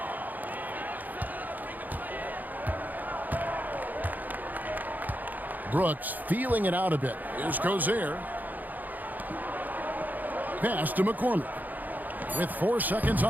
Brooks feeling it out a bit. Here's Cozier. Pass to McCormick. With 4 seconds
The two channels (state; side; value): late; left; 0.083 ms